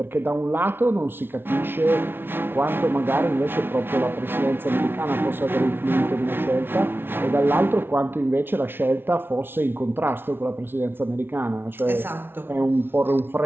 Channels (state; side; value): late; left; 0.11 ms